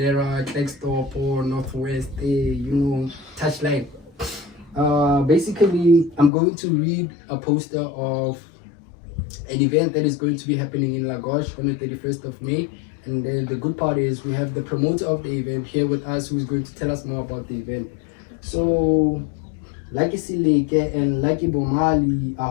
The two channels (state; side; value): drops out; right; at 6.3 s